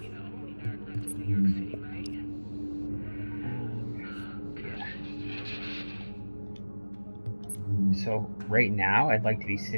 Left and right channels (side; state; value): both; inverted; correlation -1.00